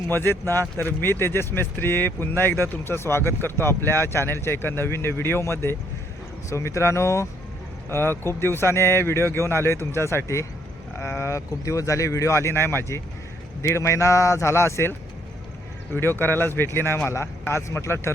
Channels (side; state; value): both; normal; correlation 0.69